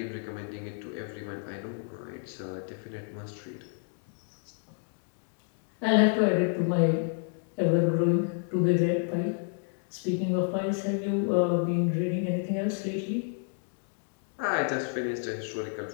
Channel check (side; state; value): right; silent; 56 dB below the other